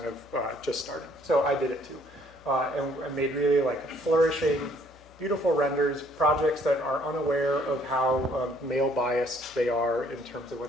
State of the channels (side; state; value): left; noise; hum, 25 dB below the sound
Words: of just starting. So I did it too. And I made really like flourishing, beautiful renders, projects that are unaware of how male biased they are in terms of